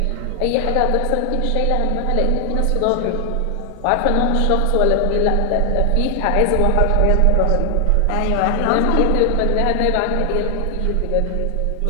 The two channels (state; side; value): different; both; correlation 0.00